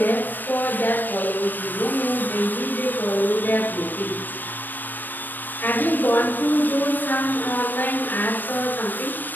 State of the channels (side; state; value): right; late; 0.091 ms